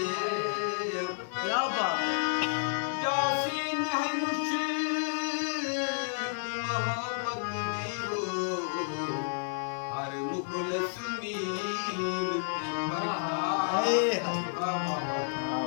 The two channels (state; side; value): silent; right; 57 dB below the other